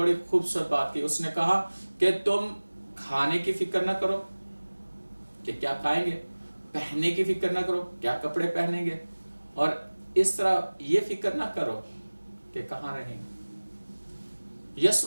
खूबसूरत बात की, उसने कहा कि तुम खाने की फिक्र ना करो कि क्या खाएंगे, पहनने की फिक्र ना करो क्या कपड़े पहनेंगे, और इस तरह ये फिक्र ना करो कि कहाँ रहेंगे। यीशु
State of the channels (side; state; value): both; inverted; correlation -1.00